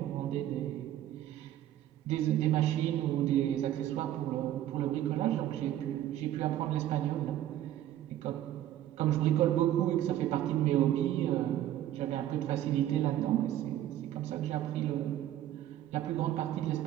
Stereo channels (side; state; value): left; quieter; 12.5 dB